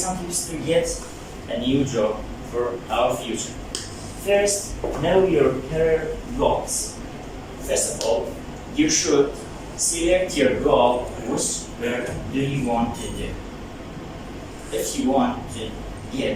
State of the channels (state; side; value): identical; both; correlation 1.00